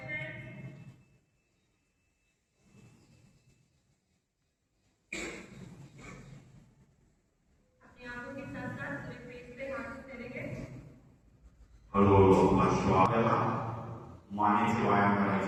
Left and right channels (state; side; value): identical; both; correlation 1.00